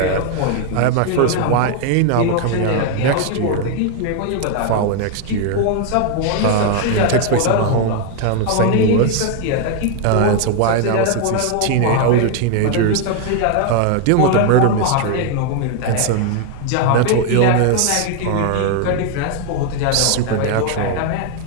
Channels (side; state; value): both; different; correlation 0.01